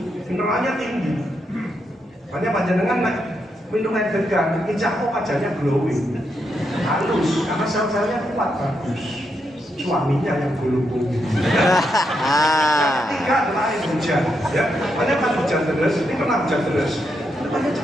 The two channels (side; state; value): both; normal; correlation 0.82